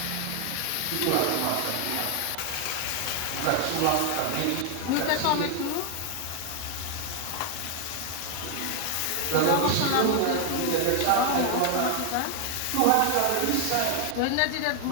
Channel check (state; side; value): different; both; correlation 0.00